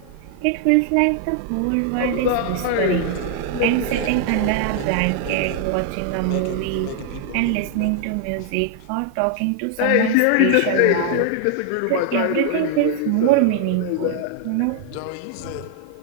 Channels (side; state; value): both; different; correlation 0.00